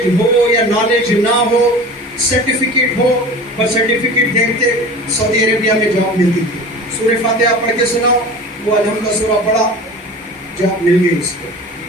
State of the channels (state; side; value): normal; both; correlation 0.37